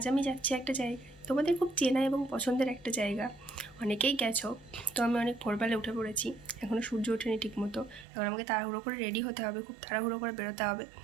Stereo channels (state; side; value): drops out; left; at 8.1 s